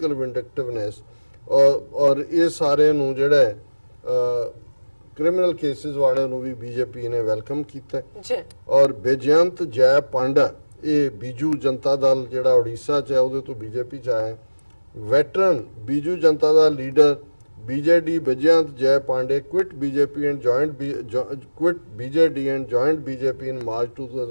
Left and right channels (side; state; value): both; inverted; correlation -1.00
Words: vindictiveness. और ये सारे नूं जेड़ा criminal cases वाले नूं भी BJP ने welcome कीता है। और बेजयंत जय पांडा ਇਹ ਬੀਜੂ ਜਨਤਾ ਦਲ ਜਿਹੜਾ ਉੜੀਸਾ 'ਚ ਹੈ ਉਹਦੇ ਤੋਂ BJP 'ਚ ਆਇਆ। ਵੈਟਰਨ ਬੀਜੂ ਜਨਤਾ ਦਾ ਲੀਡਰ BJD ਬੇਜਯੰਤ ਜੈ Pandey quit BJD and joined BJP in March